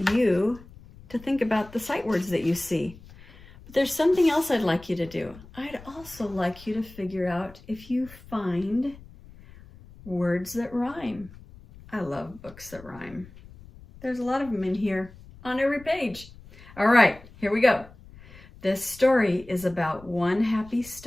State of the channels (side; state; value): left; noise; rumble, 20 dB below the sound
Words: you to think about the sight words that you see. But there's something else I'd like you to do. I'd also like you to figure out if you find words that rhyme. I love books that rhyme. There's a lot of them in here on every page. All right, here we go. This story is about one happy